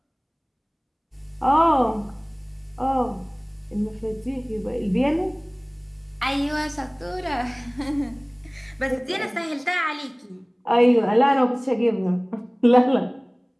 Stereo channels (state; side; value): identical; both; correlation 1.00